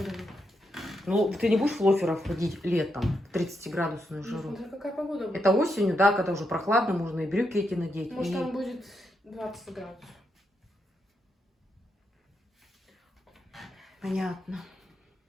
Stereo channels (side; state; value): both; normal; correlation 0.82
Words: Ну, ты не будешь в лоферах ходить летом в 30-градусную жару? Смотри, какая погода будет. Это осенью, да, когда уже прохладно, можно и брюки эти надеть. Может, и- там будет 20 градусов. Понятно.